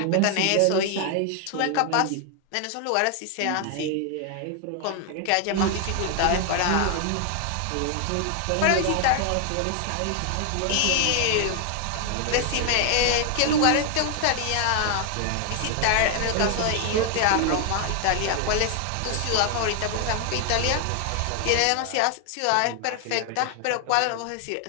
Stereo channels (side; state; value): both; different; correlation 0.00